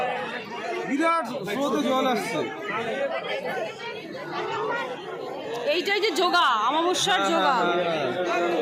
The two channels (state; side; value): identical; both; correlation 1.00